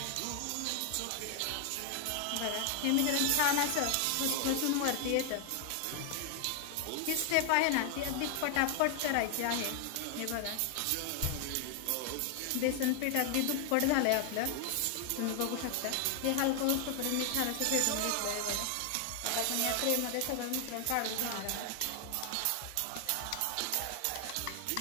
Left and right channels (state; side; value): different; both; correlation 0.00